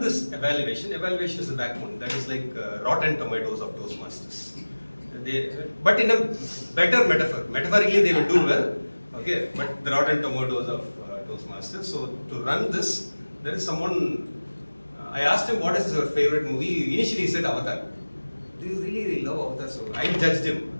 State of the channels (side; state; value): both; inverted; correlation -1.00